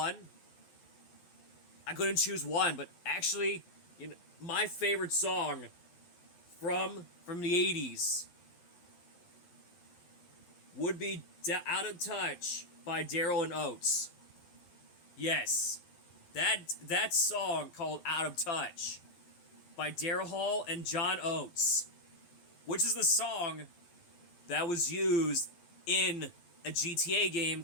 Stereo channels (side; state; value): right; late; 12 ms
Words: I couldn't choose one, but actually, you know, my favorite song from the 80s would be Out of Touch by Daryl and Oates. Yes, that song called Out of Touch by Daryl Hall and John Oates, which is the song that was used in a GTA game